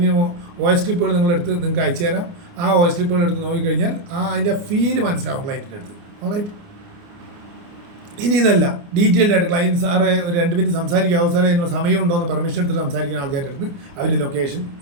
വോയിസ് ക്ലിപ്പുകൾ നിങ്ങളെടുത്ത് നിങ്ങൾക്ക് അയച്ചു തരാം. ആ വോയിസ് ക്ലിപ്പുകൾ എടുത്ത് നോക്കിക്കഴിഞ്ഞാൽ അതിൻ്റെ ഫീല് മനസ്സിലാവും ക്ലയൻറ്റിൻ്റെ അടുത്ത്. ഓൾറൈറ്റ്? ഇനി ഇതല്ല, ഡീറ്റെയിൽഡ് ആയിട്ട് ക്ലയൻറ്റ് സാറേ ഒരു 2 മിനിറ്റ് സംസാരിക്കാവോ സാറേ, അതിനുള്ള സമയമുണ്ടോ എന്ന് പെർമിഷൻ എടുത്തിട്ട് സംസാരിക്കുന്ന ആൾക്കാരുടെ അടുത്ത് അവരുടെ ലൊക്കേഷൻ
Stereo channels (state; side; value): late; left; 29 ms